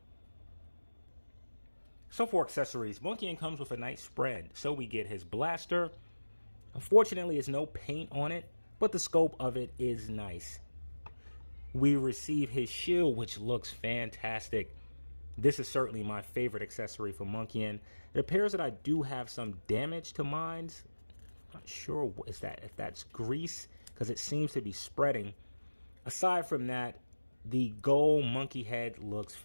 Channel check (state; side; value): inverted; both; correlation -1.00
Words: So for accessories, Monkian comes with a nice spread. So we get his blaster. Unfortunately, there's no paint on it, but the scope of it is nice. We receive his shield, which looks fantastic. This is certainly my favorite accessory for Monkian. It appears that I do have some damage to mine. Not sure if that's grease, because it seems to be spreading. Aside from that, the gold monkey head looks